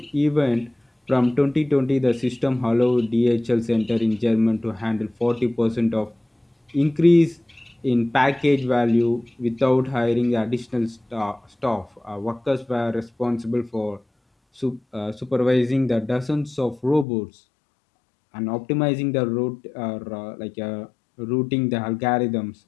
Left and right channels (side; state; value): right; drops out; at 17.1 s